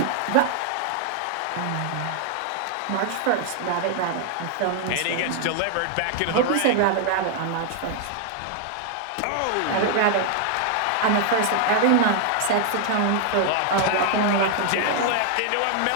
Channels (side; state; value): both; different; correlation 0.00